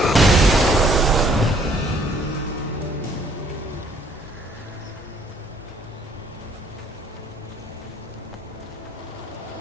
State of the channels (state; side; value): normal; both; correlation 0.63